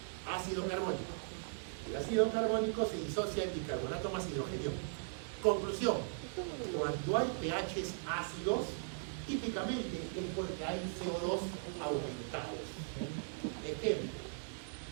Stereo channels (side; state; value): left; silent; digital silence